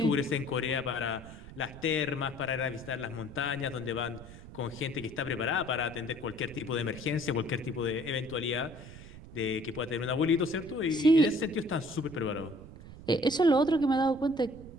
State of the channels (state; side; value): noise; right; rumble, 16 dB below the sound